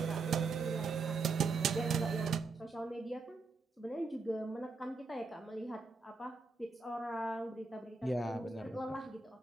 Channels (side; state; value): left; quieter; 4.0 dB